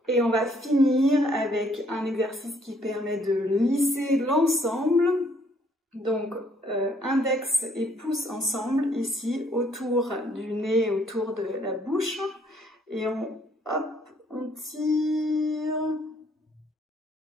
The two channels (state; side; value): normal; both; correlation 0.65